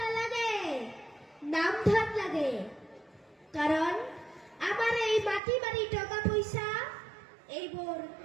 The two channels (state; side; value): drops out; left; at 5.4 s